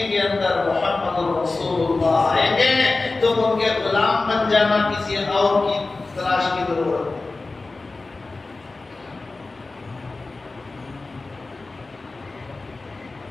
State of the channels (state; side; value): quieter; right; 3.5 dB